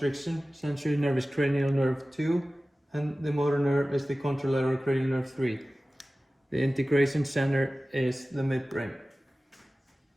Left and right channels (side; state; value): both; normal; correlation 0.97